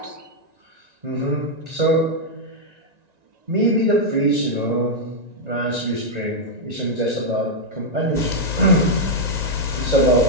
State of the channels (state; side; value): late; left; 1.9 ms